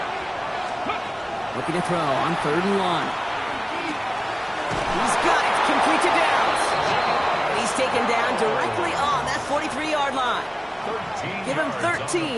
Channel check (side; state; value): both; identical; correlation 1.00